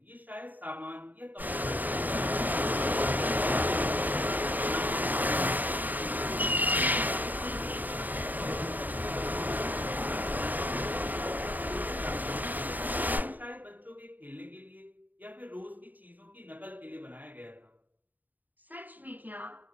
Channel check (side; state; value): left; late; 0.085 ms